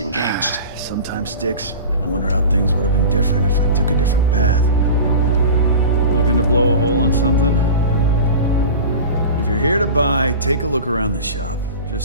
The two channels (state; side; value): inverted; both; correlation -0.34